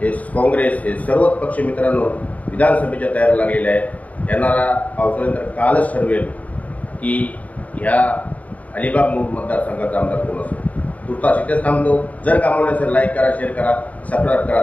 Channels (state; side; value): late; right; 0.071 ms